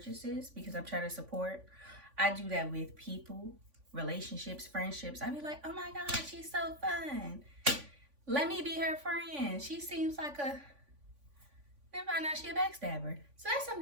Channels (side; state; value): left; late; 3.5 ms